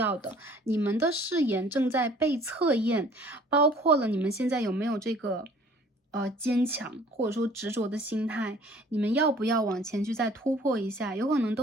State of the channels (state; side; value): normal; both; correlation 0.53